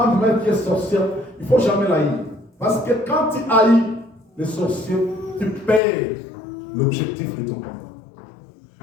qui est sorcière, il ne faut jamais la haïr. Parce que quand tu haïs les sorciers, tu perds l'objectif de ton combat.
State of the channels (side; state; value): right; drops out; at 5.8 s